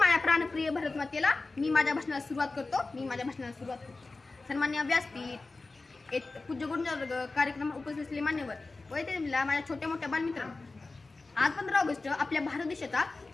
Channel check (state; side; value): quieter; right; 3.5 dB